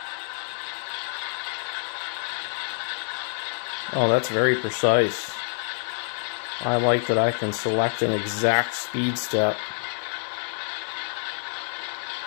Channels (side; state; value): right; silent; digital silence